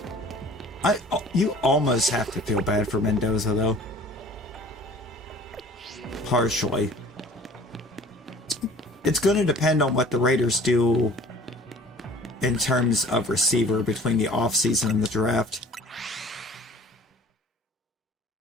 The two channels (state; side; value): normal; both; correlation 0.48